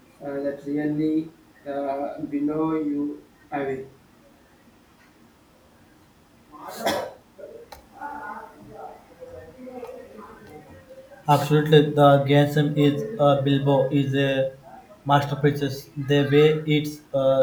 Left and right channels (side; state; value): both; identical; correlation 1.00